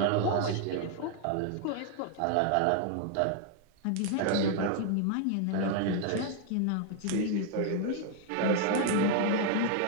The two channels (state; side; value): different; both; correlation 0.00